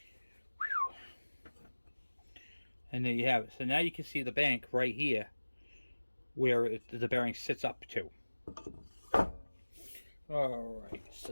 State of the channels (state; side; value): inverted; both; correlation -1.00